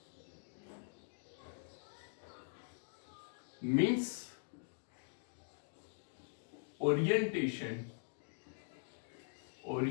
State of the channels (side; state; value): right; silent; digital silence